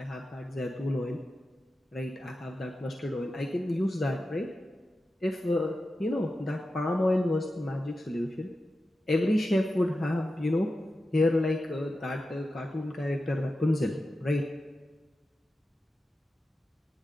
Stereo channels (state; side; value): normal; both; correlation 0.91